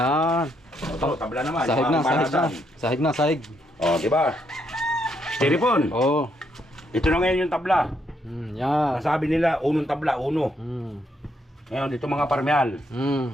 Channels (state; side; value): normal; both; correlation 0.75